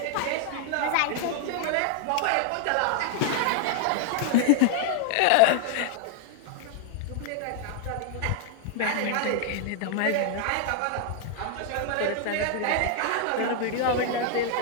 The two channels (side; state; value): both; different; correlation 0.00